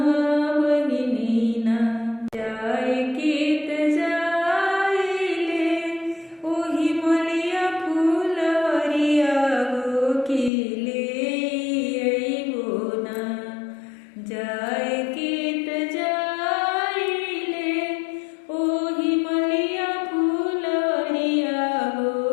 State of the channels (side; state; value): right; drops out; at 10.5 s